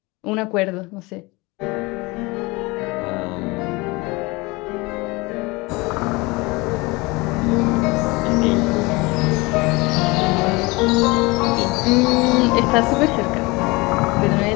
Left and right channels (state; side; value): quieter; right; 24.4 dB